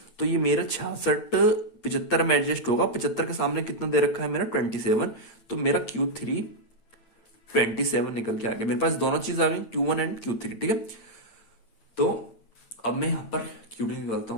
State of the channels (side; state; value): right; late; 8.6 ms